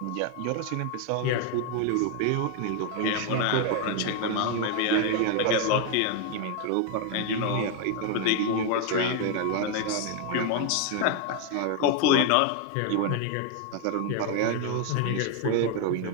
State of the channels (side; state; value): both; different; correlation 0.01